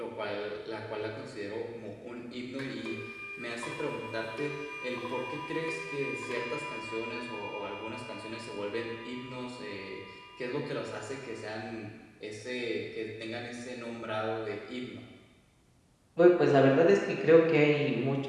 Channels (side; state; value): both; identical; correlation 1.00